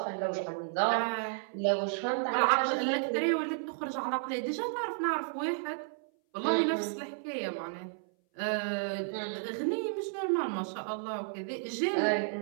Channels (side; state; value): left; silent; 56 dB below the other